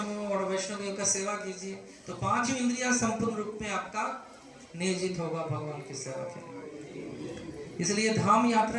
और वैष्णवियों का सेवा कीजिए, तो पांचों इंद्रियां संपूर्ण रूप में आपका नियोजित होगा भगवान की सेवा के लिए। इसलिए धाम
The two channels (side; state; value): both; identical; correlation 1.00